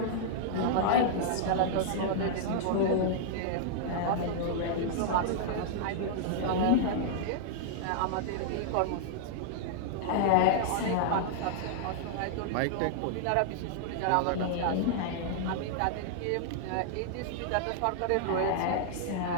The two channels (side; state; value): both; different; correlation -0.01